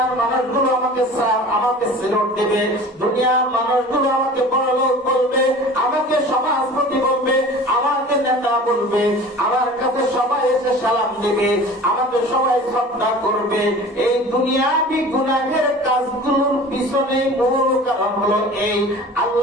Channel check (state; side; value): normal; both; correlation 0.41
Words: মানুষগুলো আমাকে সিলট দেবে, দুনিয়ার মানুষগুলো আমাকে বড়লোক বলবে, আমাকে সমাজপতি বলবে, আমাকে নেতা বলবে, আমার কাছে সবাই এসে সালাম দেবে, আমাকে সবাই শ্রদ্ধা করবে। এই দুনিয়াবি গুনাহের কাজগুলোর পিছনে মূল কারণ হলো এই।